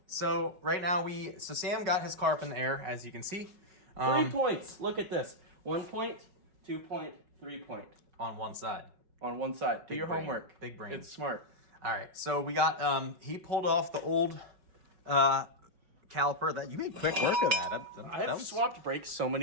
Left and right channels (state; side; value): late; left; 5.4 ms